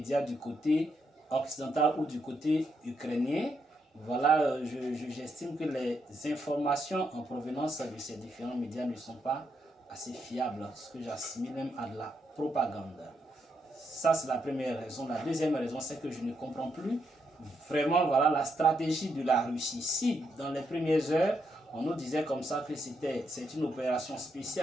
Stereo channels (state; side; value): normal; both; correlation 0.79